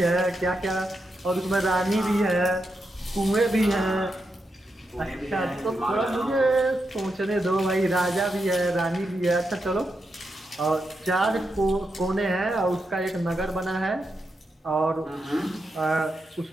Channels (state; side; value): normal; both; correlation 0.85